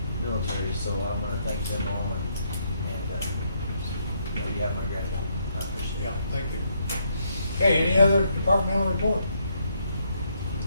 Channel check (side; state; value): both; inverted; correlation -0.74